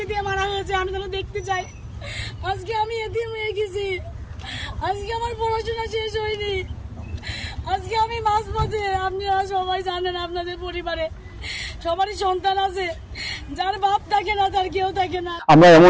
দিয়ে মারা হয়েছে, আমি যেন দেখতে চাই। আজকে আমি এতিম হয়ে গেছি, আজকে আমার পড়াশোনা শেষ হয়নি, আজকে আমি মাঝপথে। আপনারা সবাই জানেন আপনাদের পরিবারে সবারই সন্তান আছে, যার বাপ থাকে না তার কেউ থাকে না। আমরা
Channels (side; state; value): both; identical; correlation 1.00